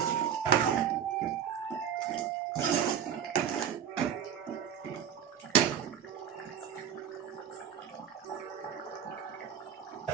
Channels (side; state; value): left; quieter; 8.6 dB